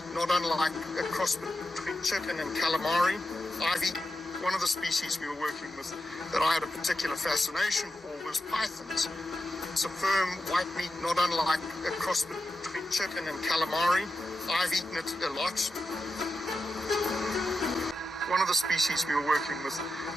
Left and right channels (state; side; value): normal; both; correlation 0.89